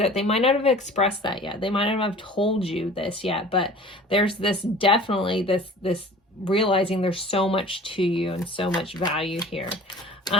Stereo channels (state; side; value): normal; both; correlation 0.44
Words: They might not have expressed that yet, they might not have told you this yet, but there's this definitely this realizing there's so much to you and so much value here.